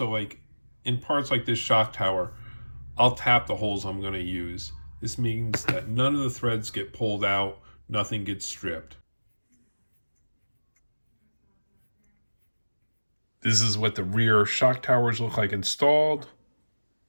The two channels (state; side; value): inverted; both; correlation -1.00